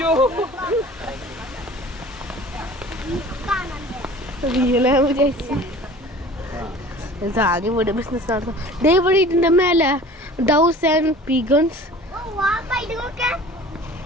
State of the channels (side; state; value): both; normal; correlation 0.44